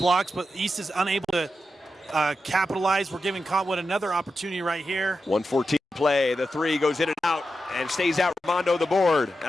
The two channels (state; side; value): normal; both; correlation 0.89